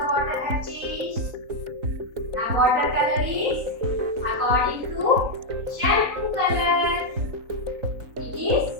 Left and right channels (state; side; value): late; left; 3.9 ms